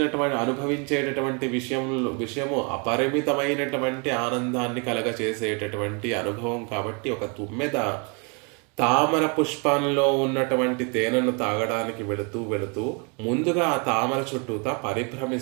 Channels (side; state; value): left; quieter; 34.3 dB